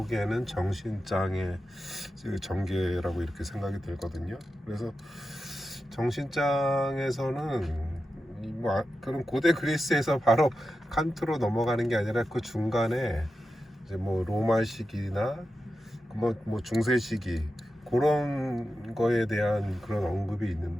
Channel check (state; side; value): normal; both; correlation 0.91